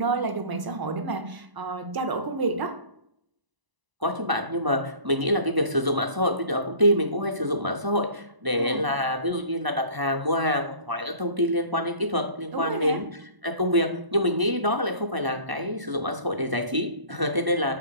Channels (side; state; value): left; late; 1.0 ms